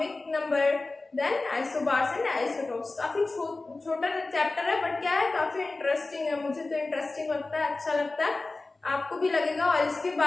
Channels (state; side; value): quieter; right; 3.3 dB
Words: number, then isobars and isotopes. काफी छोटा चैप्टर है, बट क्या है काफी इंटरेस्टिंग है, मुझे तो इंटरेस्टिंग लगता है, अच्छा लगता है। आपको भी लगेगा। और इसके